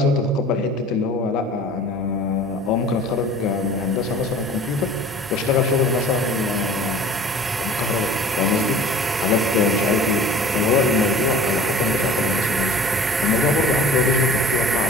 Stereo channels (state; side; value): normal; both; correlation 0.44